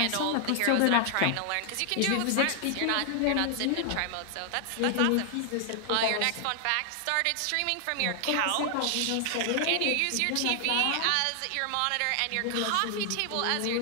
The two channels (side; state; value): both; different; correlation 0.00